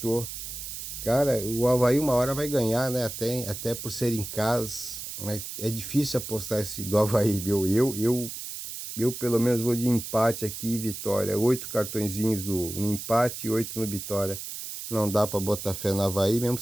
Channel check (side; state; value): right; noise; hiss, 8 dB below the sound